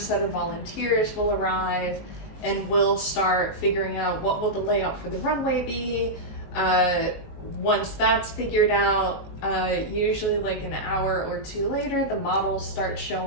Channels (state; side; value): late; right; 19 ms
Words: set of volunteers will arrive, and we'll start figuring out what will the layout for the runway be. Once that's figured out, usually like an hour or two later, the models start